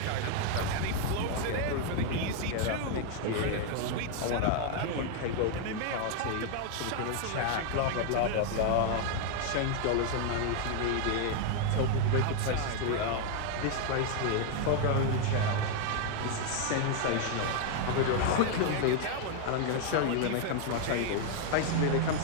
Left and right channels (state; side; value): different; both; correlation 0.00